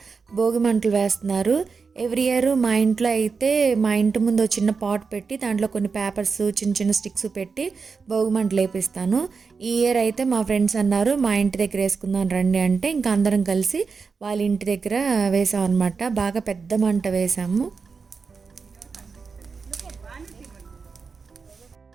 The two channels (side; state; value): left; quieter; 5.0 dB